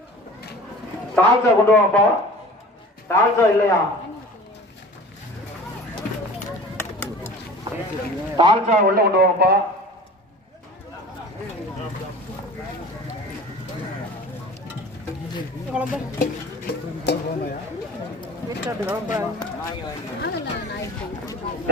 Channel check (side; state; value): both; normal; correlation 0.41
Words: தால்சா கொண்டு வாப்பா. தால்சா இல்லையா? தால்சா உள்ள கொண்டு வாப்பா.